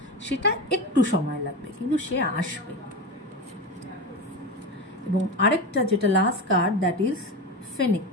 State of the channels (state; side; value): normal; both; correlation 0.22